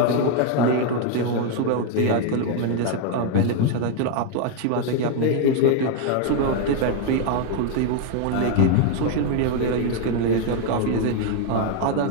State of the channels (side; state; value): both; different; correlation 0.00